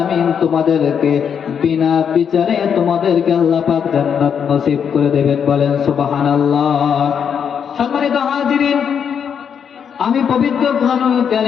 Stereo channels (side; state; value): right; quieter; 7.5 dB